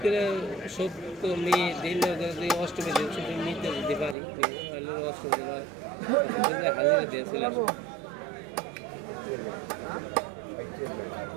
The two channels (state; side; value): drops out; left; at 4.2 s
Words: করে সপ্তমী দিন অষ্টমী দিন ছুটি নিতে যেতে পারি, অষ্টমী দিন হাজিরা দিয়ে চলে আসবো।